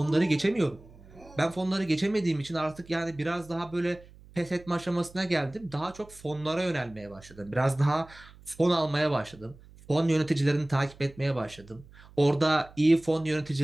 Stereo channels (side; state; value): right; noise; hum, 23 dB below the sound